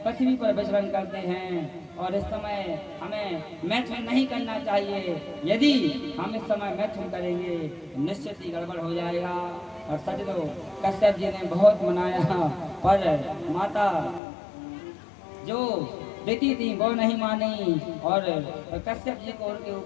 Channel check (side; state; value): right; drops out; at 14.2 s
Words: पृथ्वी पर विचरण करते हैं और इस समय हमें मैथुन नहीं करना चाहिए। यदि हम इस समय मैथुन करेंगे तो निश्चित ही गड़बड़ हो जाएगा। और सजनो कश्यप जी ने बहुत मनाया, पर माता जो दिति थी वो नहीं मानी और कश्यप जी को उनके